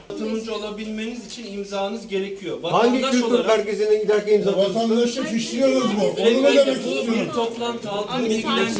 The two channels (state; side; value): identical; both; correlation 1.00